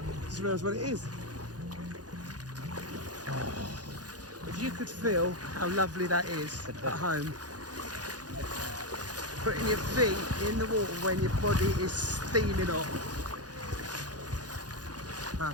Just realised what it is. Oh, if you could feel how lovely that is at home. Putting your feet in the water when your body is steaming hot.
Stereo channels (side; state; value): left; late; 0.69 ms